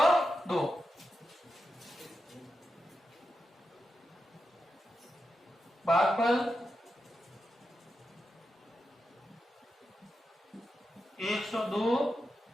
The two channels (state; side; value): normal; both; correlation 0.88